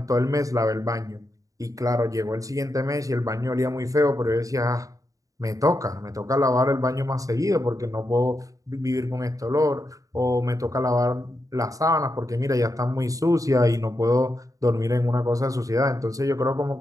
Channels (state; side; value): late; left; 0.16 ms